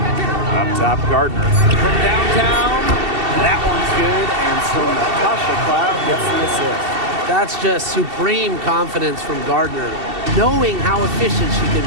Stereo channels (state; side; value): late; left; 2.7 ms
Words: Up top, Gardner. From downtown. That one's good, and so Natasha Cloud gets the assist. That's just supreme confidence from Gardner, knowing how efficient she can